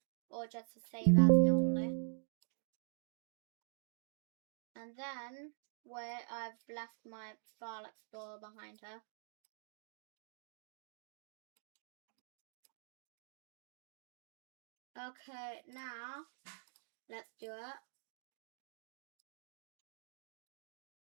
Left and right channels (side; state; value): left; silent; digital silence